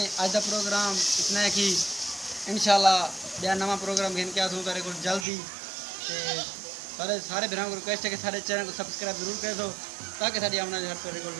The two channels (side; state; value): left; drops out; at 5.2 s